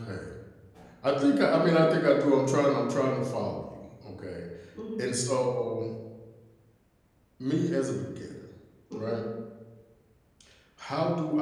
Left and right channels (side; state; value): both; identical; correlation 1.00